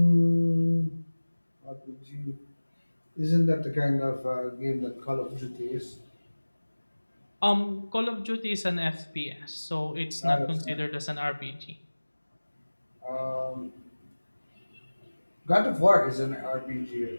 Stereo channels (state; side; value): inverted; both; correlation -1.00